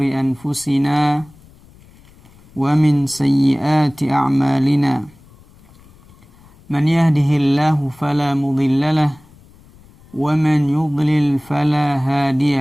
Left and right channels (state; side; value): noise; left; rumble, 26 dB below the sound